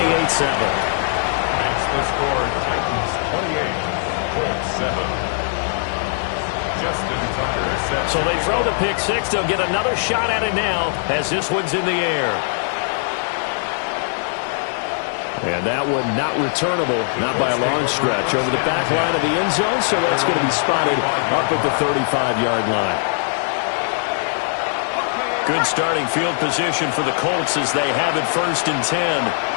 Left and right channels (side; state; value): right; silent; digital silence